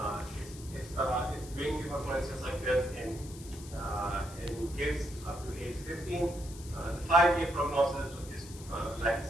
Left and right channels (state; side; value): noise; left; hiss, 17 dB below the sound